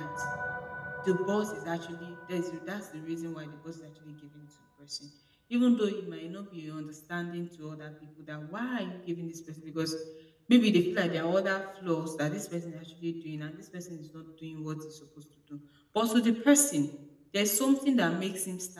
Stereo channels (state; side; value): identical; both; correlation 1.00